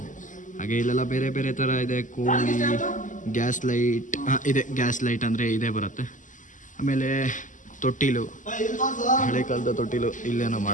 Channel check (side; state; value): right; late; 0.37 ms